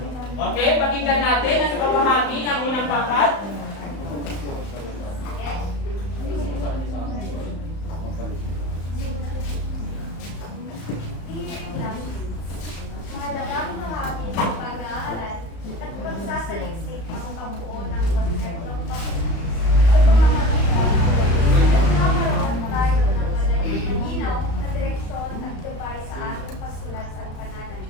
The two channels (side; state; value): right; late; 35 ms